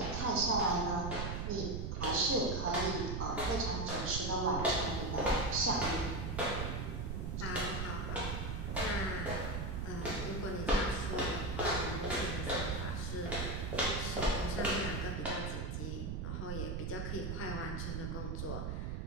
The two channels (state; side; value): noise; right; rumble, 2 dB below the sound